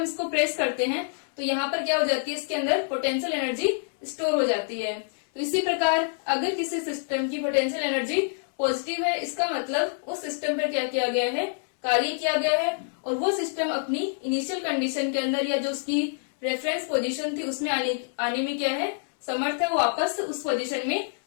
इसको प्रेस करते हैं तो यहाँ पर क्या हो जाती है, इसके अंदर पोटेंशियल एनर्जी स्टोर हो जाती है। तो इसी प्रकार अगर किसी सिस्टम की पोटेंशियल एनर्जी पॉजिटिव है, इसका मतलब उस सिस्टम पर क्या किया गया है, कार्य किया गया है, और वो सिस्टम अपनी इनिशियल कंडीशन के अंदर या जो उसकी रेफरेंस पोजीशन थी उसमें आने में क्या है, समर्थ है, वापस उस पोजीशन में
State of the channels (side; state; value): right; silent; 60 dB below the other